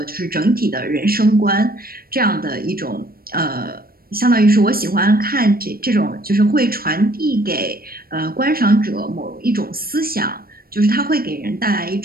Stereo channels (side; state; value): left; late; 0.43 ms